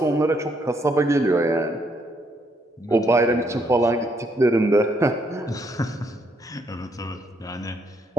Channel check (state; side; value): normal; both; correlation 0.72